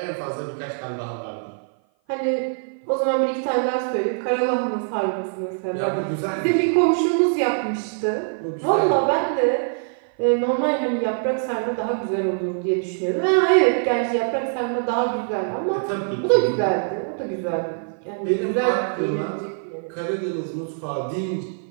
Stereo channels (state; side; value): silent; left; 56 dB below the other